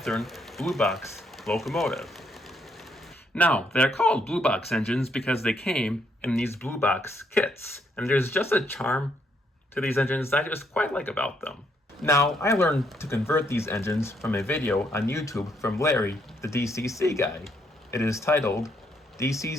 Blue Box locomotive. Now, they're called Blue Box engines because they came in these Blue Box kits, and there's just a charm to these engines that I just quite like about them. Now, I learned to convert these engines from a video on YouTube from Larry, the DCC guy. It is titled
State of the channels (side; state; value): both; normal; correlation 0.73